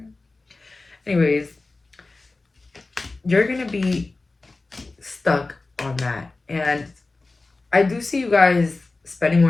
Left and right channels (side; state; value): right; quieter; 3.4 dB